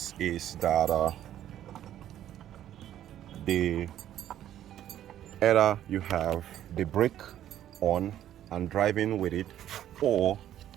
is that either you have the brake on and driving with it, or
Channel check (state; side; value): quieter; left; 11.7 dB